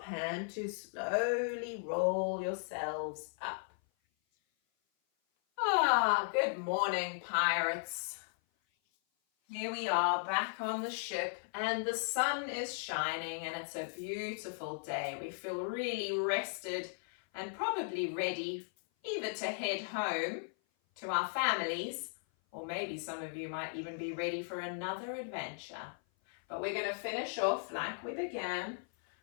hand to slowly roll yourselves up. Good morning, pirates. Here we are back on the ship and the sun is shining and it's a beautiful day. We feel really rested and probably ready either to head home to our families, or maybe some of you might even be ready for another adventure. But we're going to finish off like we began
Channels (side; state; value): right; silent; 53 dB below the other